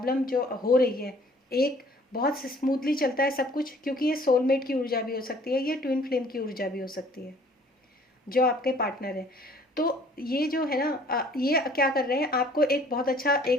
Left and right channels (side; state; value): both; normal; correlation 0.56